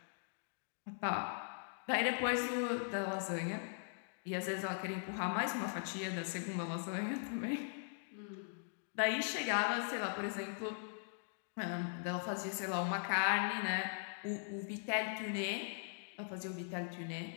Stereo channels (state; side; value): silent; right; digital silence